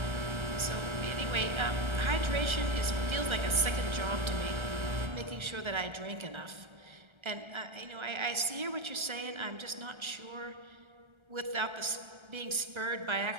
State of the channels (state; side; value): late; left; 1.3 ms